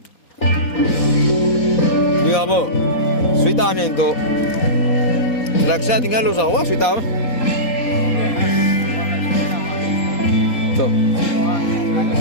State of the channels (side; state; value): right; late; 4.1 ms